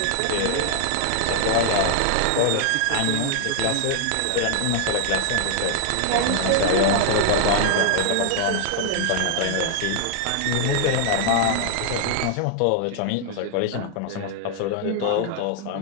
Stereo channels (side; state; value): both; different; correlation 0.00